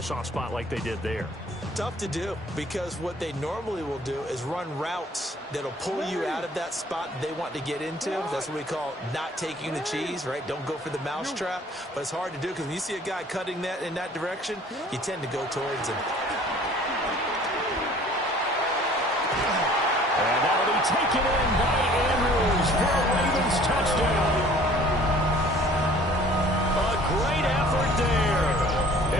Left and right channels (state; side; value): normal; both; correlation 0.52